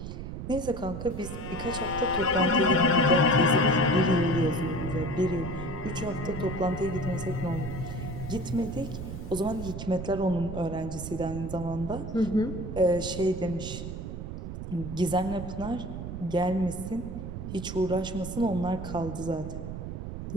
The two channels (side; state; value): right; noise; rumble, 7 dB below the sound